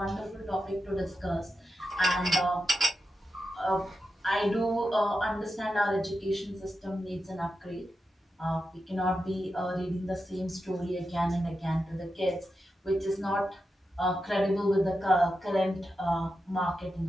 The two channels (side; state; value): both; normal; correlation 0.89